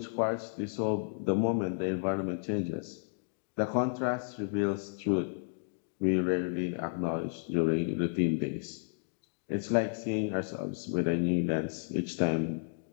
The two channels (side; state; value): right; silent; digital silence